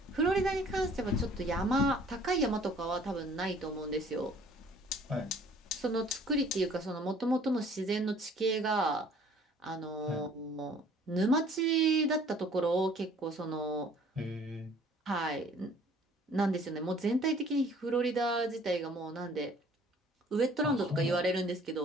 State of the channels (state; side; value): normal; both; correlation 0.55